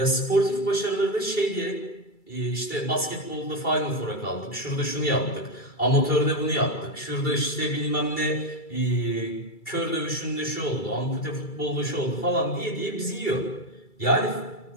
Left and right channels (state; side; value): late; right; 2.3 ms